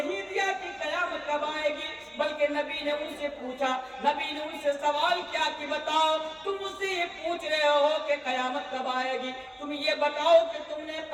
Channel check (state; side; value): identical; both; correlation 1.00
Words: دیا کہ قیامت کب آئے گی، بلکہ نبی نے ان سے پوچھا، نبی نے ان سے سوال کیا کہ بتاؤ، تم مجھ سے یہ پوچھ رہے ہو کہ قیامت کب آئے گی، تم یہ بتاؤ کہ تم نے